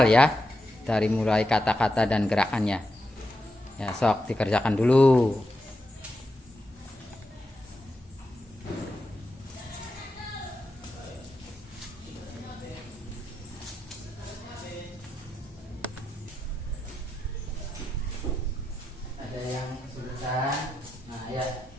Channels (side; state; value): both; normal; correlation 0.86